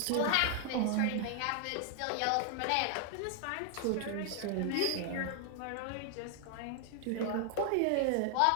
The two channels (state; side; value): different; both; correlation 0.00